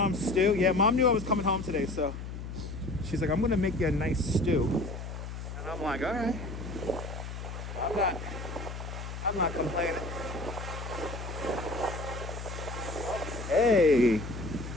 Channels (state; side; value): noise; left; hum, 8 dB below the sound